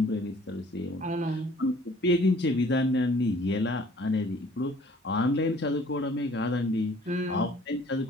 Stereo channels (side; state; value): both; normal; correlation 0.55